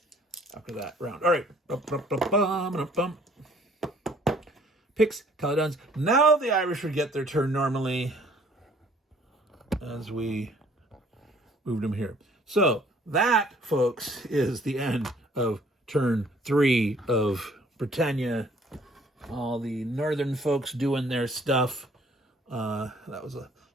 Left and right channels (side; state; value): both; normal; correlation 0.59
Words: after that round. All right. Picts, Caledonians. Now the Irish would get their turn normally as we moved them here. So that, folks, is the end of turn 3 of Britannia. All the northern folks doing their stuff. That was a